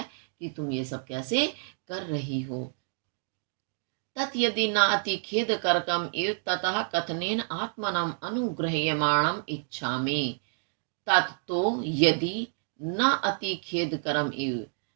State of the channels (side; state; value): left; silent; digital silence